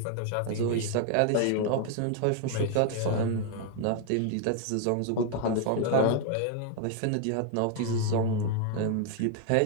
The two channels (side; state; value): both; different; correlation 0.00